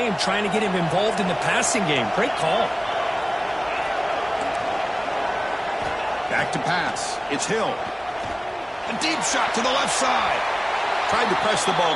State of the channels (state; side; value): identical; both; correlation 1.00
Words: trying to get him involved in the passing game. Great call. Back to pass. It's Hill. A deep shot to the left side. Tried to press the ball